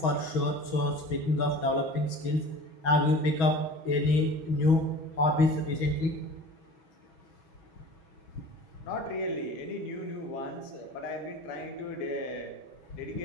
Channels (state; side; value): late; right; 6.2 ms